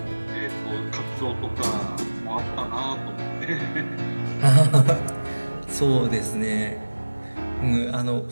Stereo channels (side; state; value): both; inverted; correlation -1.00